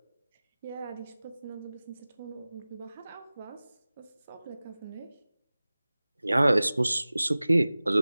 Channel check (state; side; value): inverted; both; correlation -0.98